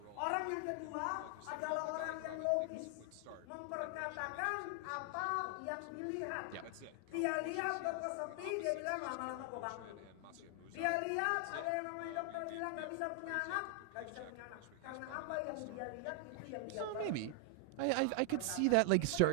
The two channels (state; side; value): different; both; correlation 0.00